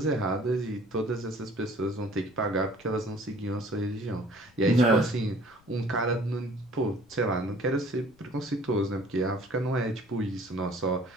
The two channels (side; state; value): left; noise; rumble, 29 dB below the sound